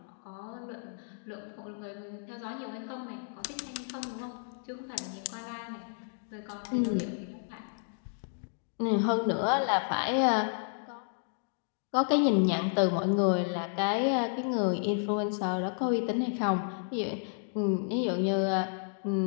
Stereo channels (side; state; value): right; silent; digital silence